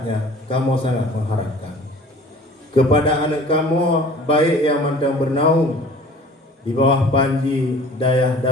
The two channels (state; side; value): normal; both; correlation 0.47